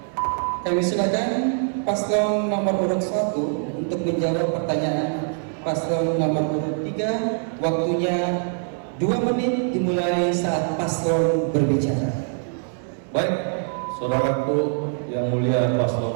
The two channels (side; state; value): left; silent; 58 dB below the other